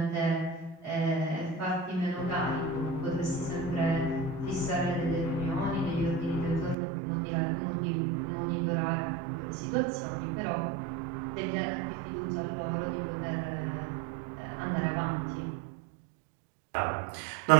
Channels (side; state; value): left; drops out; at 6.8 s